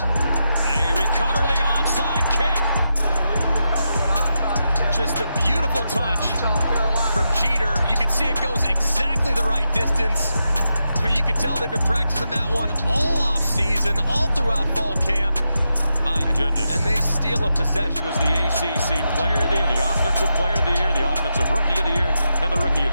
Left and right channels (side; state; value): both; inverted; correlation -0.86